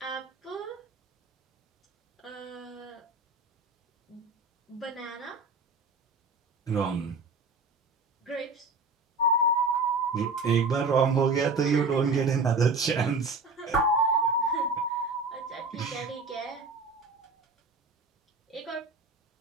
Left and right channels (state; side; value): quieter; left; 3.5 dB